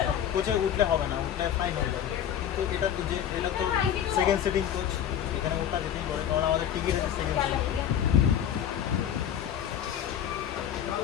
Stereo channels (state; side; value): quieter; right; 9.8 dB